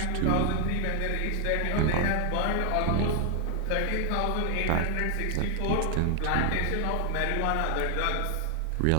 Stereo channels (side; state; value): both; different; correlation 0.00